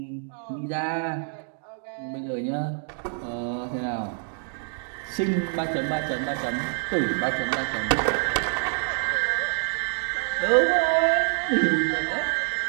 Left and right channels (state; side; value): silent; left; digital silence